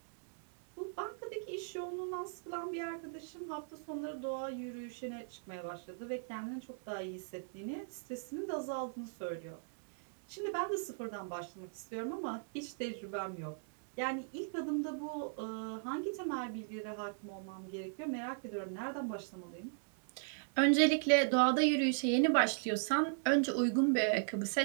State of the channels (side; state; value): left; silent; digital silence